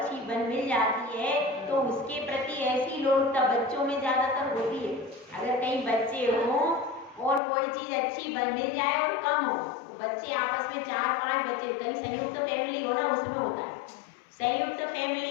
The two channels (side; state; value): right; drops out; at 7.4 s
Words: मिल जाती है तो उसके प्रति ऐसी लोलुपता बच्चों में ज्यादातर होती है। अगर कहीं बच्चे हों और कोई चीज अच्छी मिल जाए और कम हो, तो बच्चे आपस में 4-5 बच्चे, कहीं संयुक्त फैमिली हो ना, उसमें होता है, संयुक्त